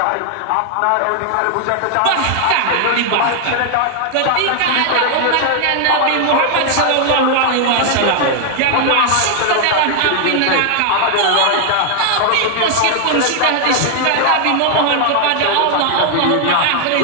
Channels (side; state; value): both; different; correlation 0.00